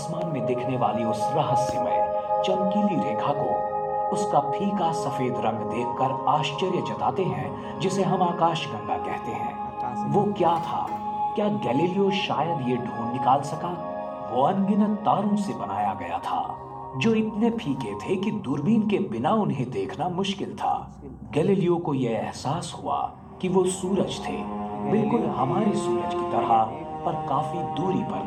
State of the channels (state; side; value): identical; both; correlation 1.00